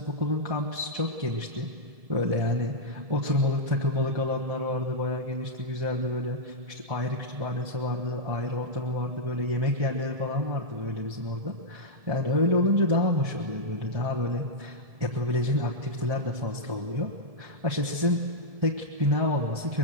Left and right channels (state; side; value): late; left; 1.7 ms